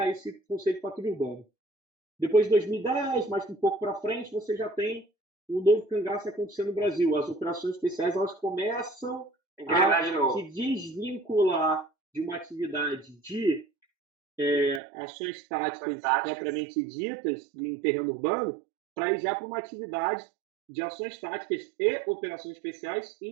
esse conceito de patrulha urbana. Depois de 2010, mais um pouco para frente, você já tem o novo cangaço acontecendo no Brasil. As operações especiais elas começam a se desvincular de uma atividade de ações táticas propriamente ditas em terreno urbano para ir já para uma atividade de ações táticas e operações especiais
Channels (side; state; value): left; drops out; at 14.8 s